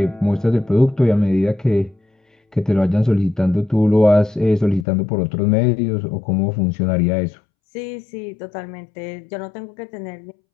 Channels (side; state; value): right; drops out; at 4.9 s